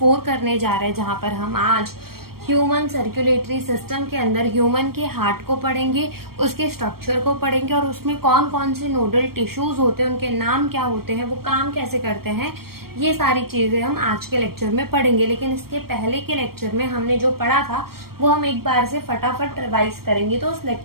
करने जा रहे हैं, जहां पर हम आज ह्यूमन सर्कुलेटरी सिस्टम के अंदर ह्यूमन के हार्ट को पढ़ेंगे, उसके स्ट्रक्चर को पढ़ेंगे और उसमें कौन कौन से नोडल टिश्यूज होते हैं, उनके नाम क्या होते हैं, वो काम कैसे करते हैं, ये सारी चीजें हम आज के लेक्चर में पढ़ेंगे। लेकिन इसके पहले के लेक्चर में हमने जो पढ़ा था वो हम एक बार से फटाफट रिवाइज करेंगे। तो उस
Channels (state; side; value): late; left; 0.94 ms